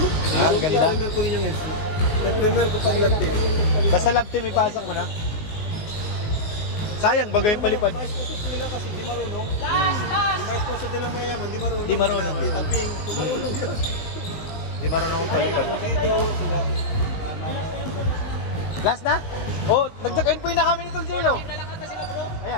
Ah, ganda. Primer ko yung heads. Primer ko pag lap team. Basta lab team, ipasok mo na. Sayang, bagay yung palipad. Mais po nila kasi di marunong. Di mais po nila mayaman, di marunong. Di marunong. Tita Ping, di marunong yun. Di marunong akong palipad. Dito, sila. Last na? Oh, nag-check-in po na kami ni Tol Jello.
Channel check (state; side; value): late; right; 19 ms